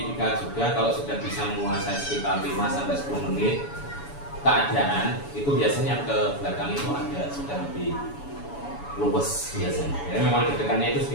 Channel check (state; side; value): late; right; 7.0 ms